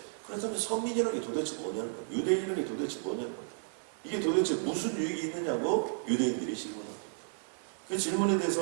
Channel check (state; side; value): silent; left; 56 dB below the other